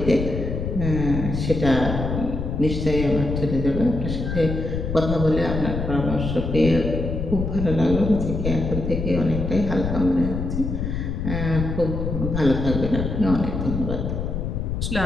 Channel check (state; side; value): noise; left; rumble, 3 dB below the sound